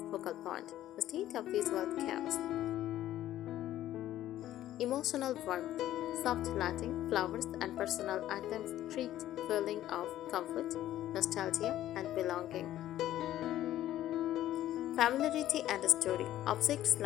focal point instead of visual chaos. Emotional warmth. Soft lighting, flowers, and personal items create feeling of comfort, nostalgia, and belonging. Familiarity and story. Objects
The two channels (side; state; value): right; quieter; 13.2 dB